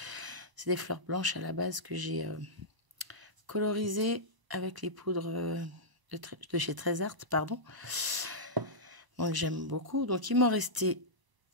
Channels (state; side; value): late; left; 1.0 ms